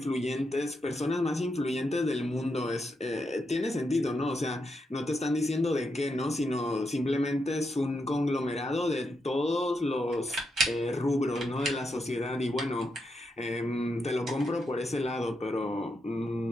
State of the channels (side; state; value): both; normal; correlation 0.83